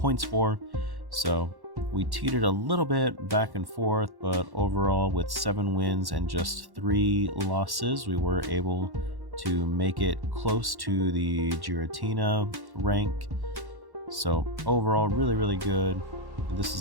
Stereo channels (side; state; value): left; late; 1.1 ms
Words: for. So we teetered a little bit back and forth, but overall with 7 wins and just 3 losses, we were able to make it close to the Giratina rank. So overall, really good. This